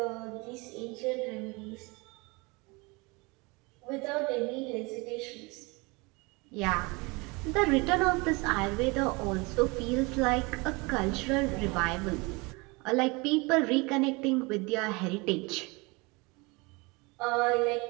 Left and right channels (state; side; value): quieter; left; 26.7 dB